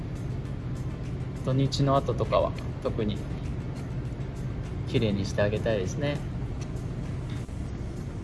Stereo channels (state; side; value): identical; both; correlation 1.00